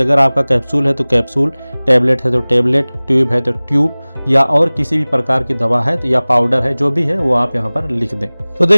आपका कैप्सूल है तो कैप्सूल, टैबलेट है तो टैबलेट, ट्यूब है तो ट्यूब, या और किसी भी प्रकार की दवा है तो या पाउडर है, जो भी है वो आप यहाँ पर लिख दें। तो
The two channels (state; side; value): inverted; both; correlation -1.00